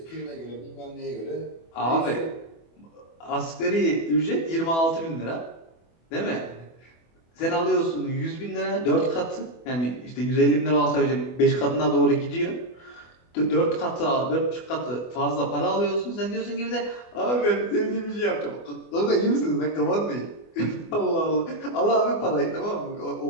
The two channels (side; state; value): right; late; 24 ms